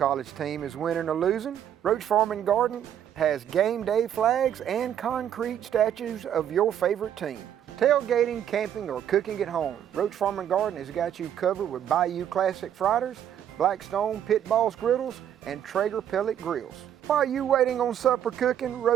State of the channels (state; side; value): quieter; left; 10.0 dB